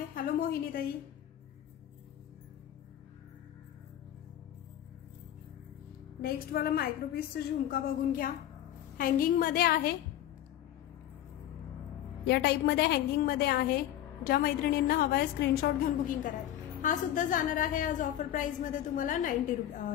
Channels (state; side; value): quieter; right; 12.0 dB